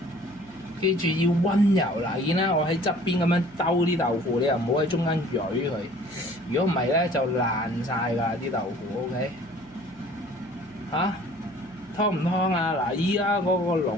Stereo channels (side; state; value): right; noise; hum, 25 dB below the sound